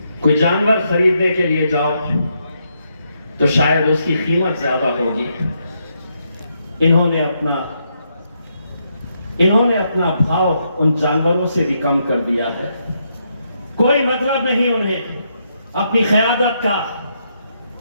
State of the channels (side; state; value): both; inverted; correlation -0.79